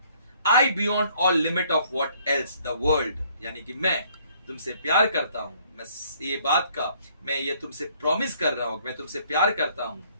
I beyond all limit of what else the world, यानी कि मैं तुमसे प्यार करता हूं, मैं ये बात का मैं ये तुमसे प्रॉमिस कर रहा हूं, मैं तुमसे प्यार करता हूं।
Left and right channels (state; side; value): inverted; both; correlation -0.63